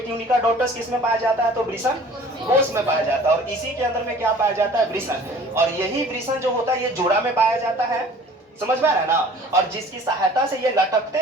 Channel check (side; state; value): both; normal; correlation 0.48